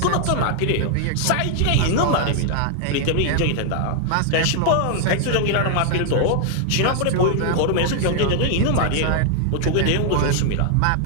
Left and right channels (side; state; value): both; different; correlation 0.00